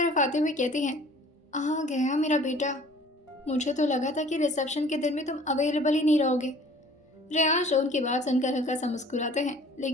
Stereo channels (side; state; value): both; normal; correlation 0.50